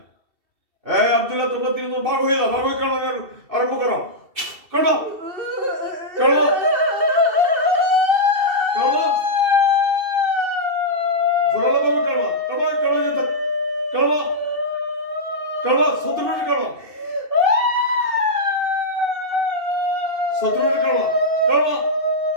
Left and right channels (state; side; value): late; left; 2.7 ms